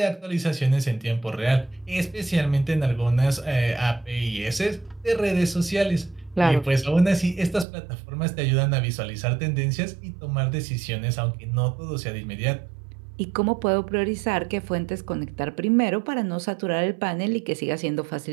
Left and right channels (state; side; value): drops out; left; at 7.7 s